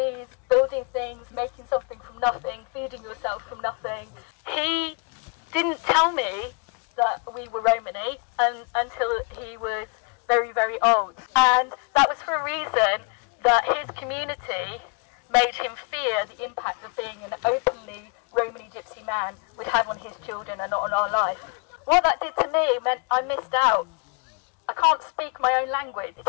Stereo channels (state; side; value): quieter; right; 33.4 dB